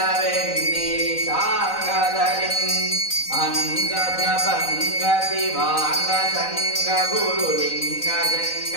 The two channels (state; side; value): late; right; 3.9 ms